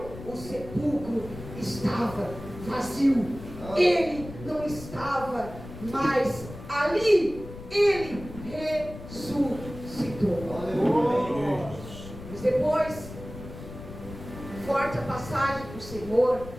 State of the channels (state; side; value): noise; left; rumble, 13 dB below the sound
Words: o sepulcro estava vazio. Ele não estava mais ali. Ele ressuscitou. Mas depois, forte a passagem do Senhor,